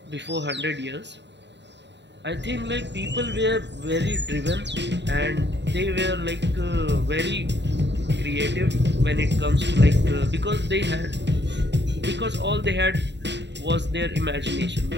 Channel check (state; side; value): late; left; 0.51 ms